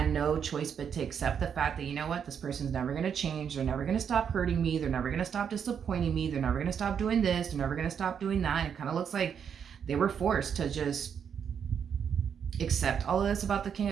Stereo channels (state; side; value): quieter; left; 7.6 dB